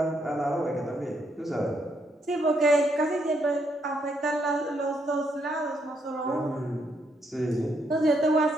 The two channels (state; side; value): normal; both; correlation 0.75